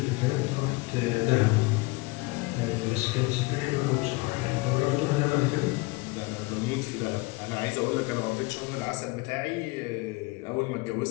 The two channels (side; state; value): right; quieter; 23.7 dB